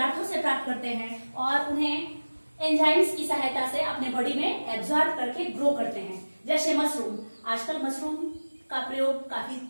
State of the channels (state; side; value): inverted; both; correlation -1.00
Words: से प्राप्त करते हैं और उन्हें एंजाइम्स की सहायता से अपने बॉडी में एब्जॉर्ब करके ग्रो करते हैं. जैसे मशरूम, आजकल मशरूम का प्रयोग काफी